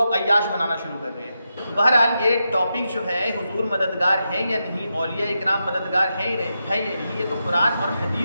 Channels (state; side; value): inverted; both; correlation -0.87